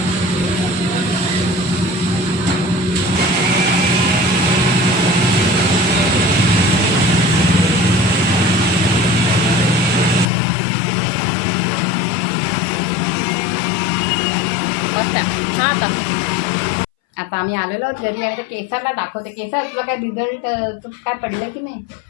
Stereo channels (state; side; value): drops out; right; at 10.2 s